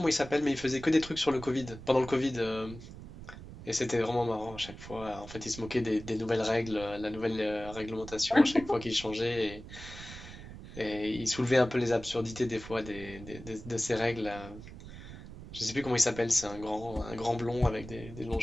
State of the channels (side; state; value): right; noise; rumble, 14 dB below the sound